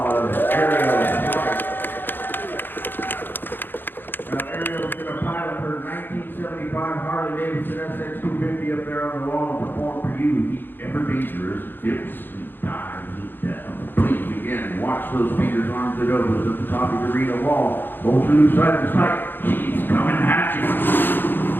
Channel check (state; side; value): late; right; 0.096 ms